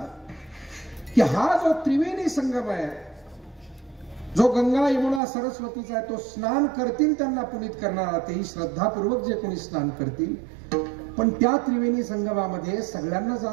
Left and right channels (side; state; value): left; drops out; at 5.2 s